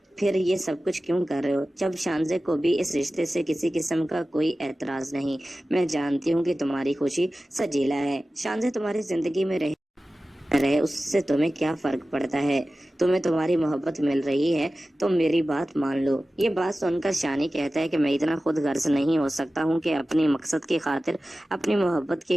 फिर ये सब कुछ क्यों कर रहे हो? जब शानजे को भी इस रिश्ते से किसी किस्म का कोई एतराज नहीं। मैं जानती हूँ कि तुम्हारी खुशी सजीला है। शानजे तुम्हारी जिंदगी में रहे उससे तुम्हें क्या फर्क पड़ता है? तुम्हें तुम्हारी मोहब्बत मिल रही है तो मेरी बात मान लो। ये बात सुनकर शानी कहता है कि मैं इतना खुद गर्ज नहीं हो सकता हूँ कि अपनी मकसद की खातिर, अपनी मोहब्बत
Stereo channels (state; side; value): normal; both; correlation 0.95